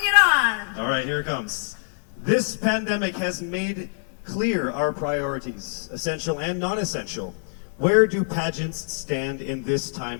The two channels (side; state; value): right; silent; digital silence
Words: on. All right, here it comes. This pandemic has made clear our priorities, essential and non-essential. Where do pageants stand in this